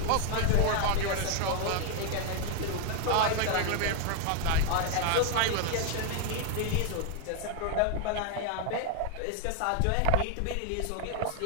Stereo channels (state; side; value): different; both; correlation 0.00